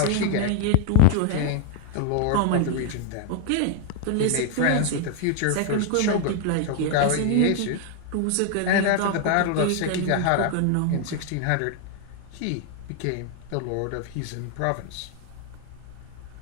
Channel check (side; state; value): both; different; correlation 0.00